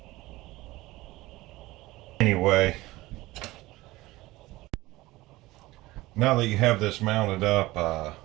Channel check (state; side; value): quieter; left; 19.1 dB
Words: Anyway, now that you have this mounted up,